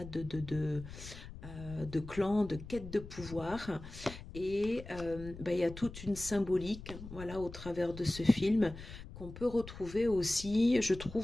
de clans, de quête de pouvoir. Et il y a toute une symbolique, voilà, au travers de ce film qu'on peut retrouver aussi, je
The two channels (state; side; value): noise; left; rumble, 13 dB below the sound